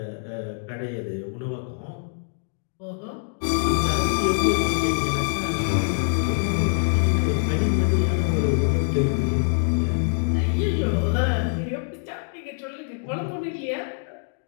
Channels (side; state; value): right; silent; digital silence